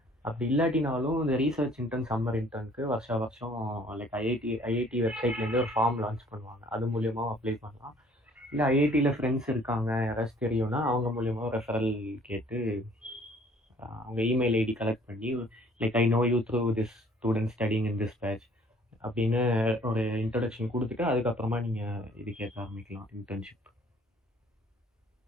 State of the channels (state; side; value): normal; both; correlation 0.57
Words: அப்படி இல்லாட்டினாலும் இந்த ரீசர்ச் இன்டர்ன் சம்மர் இன்டர்னுக்கு வருஷம் லைக் ஐஐடி வெப்சைட்லேருந்து ஒரு ஃபார்ம் லான்ச் பண்ணுவாங்க. அது மூலியமாக அப்ளை பண்ணலாம். இல்லை ஐஐடியில் ஃப்ரெண்ட்ஸ் இருக்காங்க யாராச்சும் தெரியும்னா அவங்க மூலியமாக ரெஃபரல் கேட்டு அவங்க இமெயில் ஐடி கலெக்ட் பண்ணி like I know you through this student studying in this batch, அப்படின்னு ஒரு இன்ட்ரடக்ஷன் கொடுத்துட்டு அதுக்கப்புறமா நீங்கள் இது கேட்க ஆரம்பிக்கலாம் இன்டர்ன்ஷிப்.